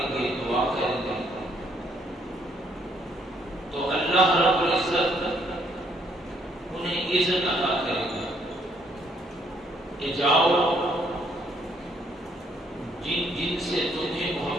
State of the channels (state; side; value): normal; both; correlation 0.68